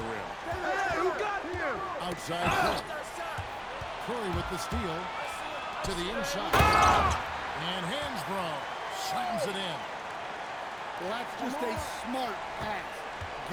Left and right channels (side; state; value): both; identical; correlation 1.00